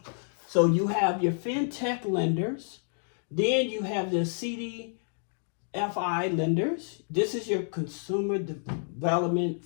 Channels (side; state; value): right; silent; digital silence